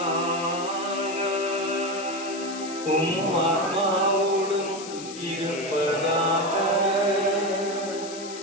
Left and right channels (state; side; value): noise; left; hiss, 13 dB below the sound